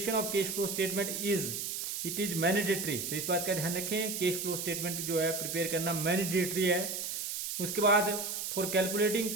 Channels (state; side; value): noise; right; hiss, 3 dB below the sound